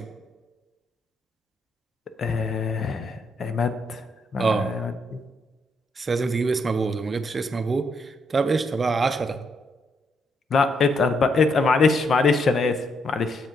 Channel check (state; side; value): normal; both; correlation 0.76